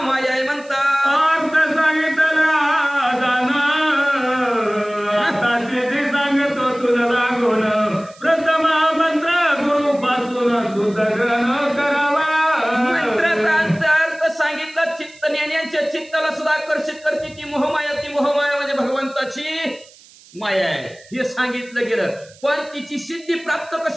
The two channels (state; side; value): noise; right; hiss, 25 dB below the sound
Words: आहे म्हणतात। अर्थ सांगितला जाणं आता सिद्धी सांगतो तुला लागून, प्रथम मंत्र गुरु पासून सुधारण करावा। मंत्राचा अर्थ सांगितला, चित्त ज्ञानींच्या चित्ताला सुद्धा आकर्षित करते ती मोहमाया। ती मोहमाया म्हणजे भगवंताची माया आहे हे सांगितलं गेलं, पण तिची सिद्धी प्राप्त